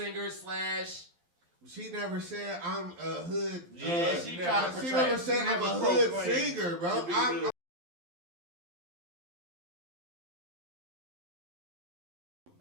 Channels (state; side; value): late; left; 12 ms